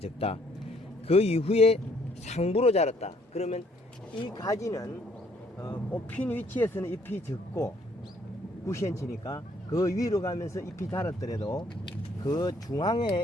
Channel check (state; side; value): normal; both; correlation 0.65